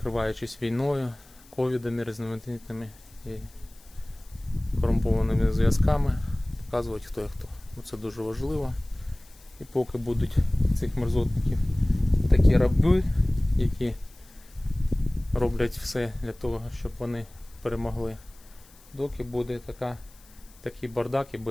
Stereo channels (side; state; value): left; noise; hiss, 26 dB below the sound